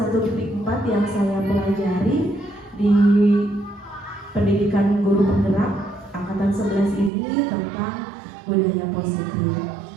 yang saya pelajari di pendidikan guru penggerak angkatan 11 ini tentang budaya positif.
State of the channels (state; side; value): drops out; left; at 7.1 s